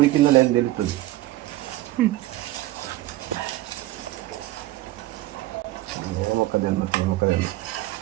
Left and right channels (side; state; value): left; quieter; 16.6 dB